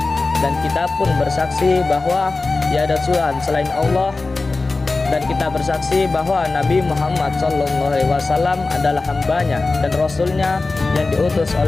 dan kita pun bersaksi bahwa tiada Tuhan selain Allah, dan kita bersaksi bahwa Nabi Muhammad SAW adalah hambanya dan rasulnya yang diutus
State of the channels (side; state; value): right; quieter; 3.6 dB